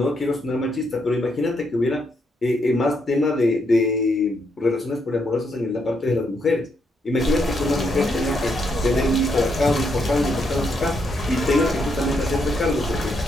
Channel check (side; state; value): both; normal; correlation 0.77